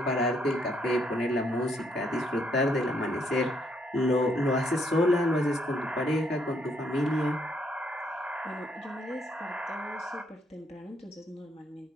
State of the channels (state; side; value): normal; both; correlation 0.72